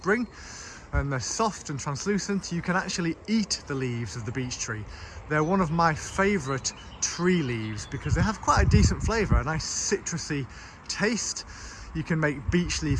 and they're soft and translucent, you can actually eat the leaves of the beech tree. They're one of my favourite tree leaves because they have quite a decent flavour, a nice citrusy taste. You can make beech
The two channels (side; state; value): both; identical; correlation 1.00